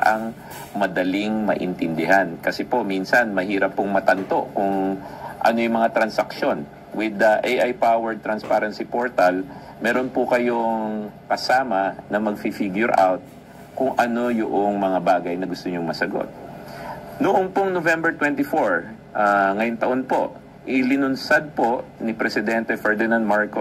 madaling maintindihan. Kasi po, minsan mahirap pong matanto kung ano yung mga transaksyon. With the AI-powered transparency portal, meron po kayong kasama na mag-figure out kung ano yung mga bagay na gusto nyong masagot. Noong pong November 24, ngayong taon po, ilinunsad po ni Presidente Ferdinand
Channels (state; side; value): identical; both; correlation 1.00